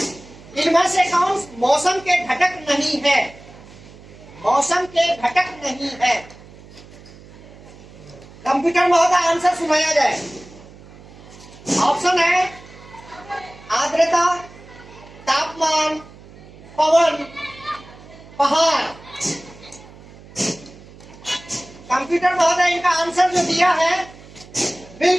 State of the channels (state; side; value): noise; right; hum, 20 dB below the sound